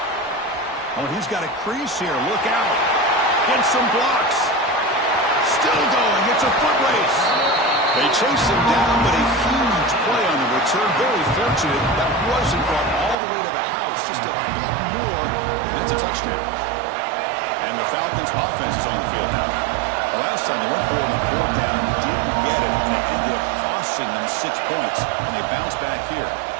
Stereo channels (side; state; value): left; drops out; at 13.2 s